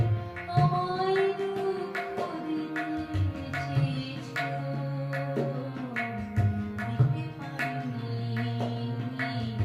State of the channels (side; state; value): both; identical; correlation 1.00